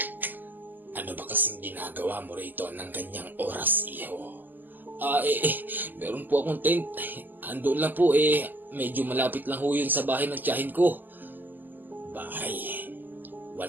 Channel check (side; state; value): left; late; 0.087 ms